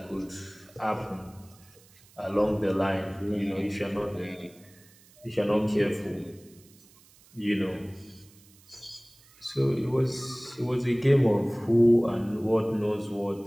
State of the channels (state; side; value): noise; right; hiss, 27 dB below the sound